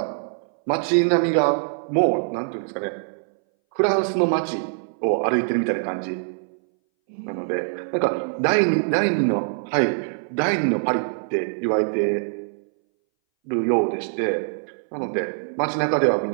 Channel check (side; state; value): left; silent; 61 dB below the other